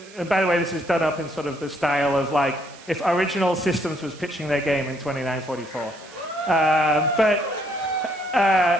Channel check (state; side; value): noise; right; hiss, 21 dB below the sound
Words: by the way, this is done up in sort of the style of like if Original Systems was pitching their game in 2944.